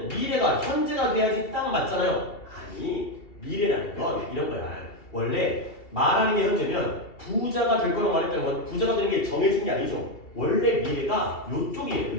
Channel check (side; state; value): right; late; 2.9 ms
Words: 미래가 현재가 돼야지 딱 맞잖아요. 아니 미래라는 건 이런 거야. 원래 말하는 게 현재면 부자가 될 거라고 말했다는 건 부자가 되는 게 정해진 게 아니죠. 원래 미래가 요쪽이에요.